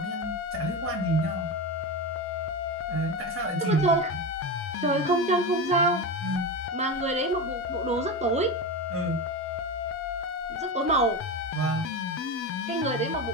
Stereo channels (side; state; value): both; normal; correlation 0.20